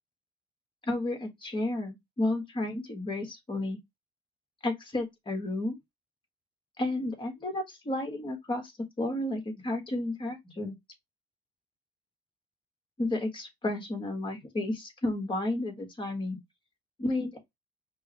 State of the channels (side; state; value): both; normal; correlation 0.79